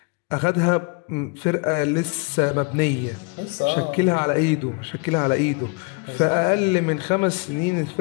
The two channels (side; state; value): right; quieter; 32.5 dB